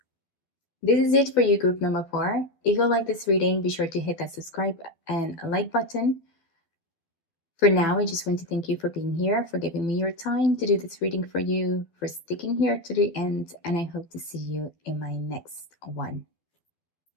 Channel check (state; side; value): late; right; 12 ms